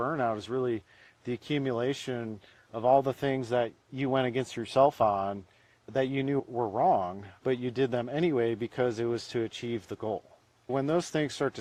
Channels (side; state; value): both; identical; correlation 1.00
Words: is really the accumulation of all the things that you went against yourself on that you knew were wrong, but you did them anyway because it was to achieve the goal. When those things start to